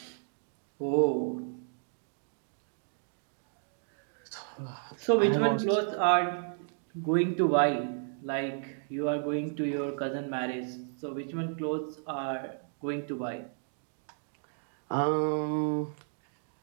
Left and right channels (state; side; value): silent; left; digital silence